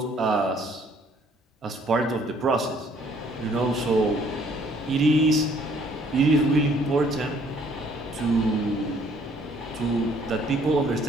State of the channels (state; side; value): normal; both; correlation 0.62